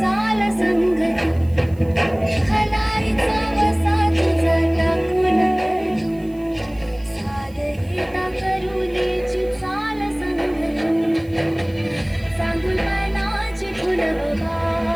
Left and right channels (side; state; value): right; noise; hiss, 28 dB below the sound